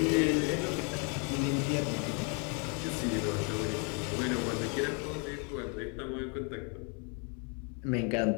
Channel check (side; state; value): right; quieter; 36.9 dB